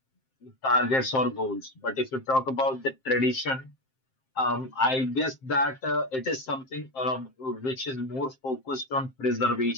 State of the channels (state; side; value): late; right; 7.6 ms